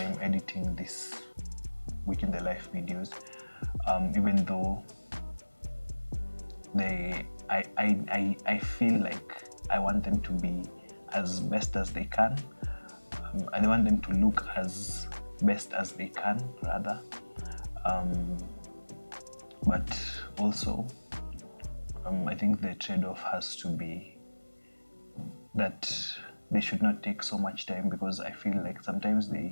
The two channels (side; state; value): both; inverted; correlation -1.00